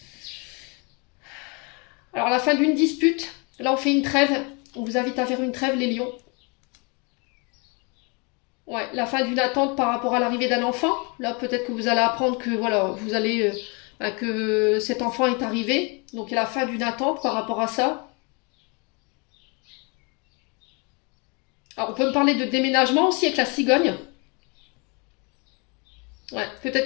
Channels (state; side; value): quieter; right; 31.6 dB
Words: Alors, à la fin d'une dispute, là, on fait une trêve. On vous invite à faire une trêve, les lions. Ouais, la fin d'une attente par rapport à l'arrivée d'un enfant. Là, peut-être que vous allez apprendre que, voilà, vous allez... que cet enfant est arrivé. Donc, il y a la fin d'une attente par rapport à ça. Alors, on peut me parler de déménagement aussi avec la cigogne. Ouais, peut-être